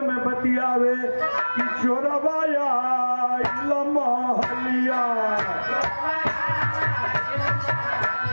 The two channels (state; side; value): inverted; both; correlation -1.00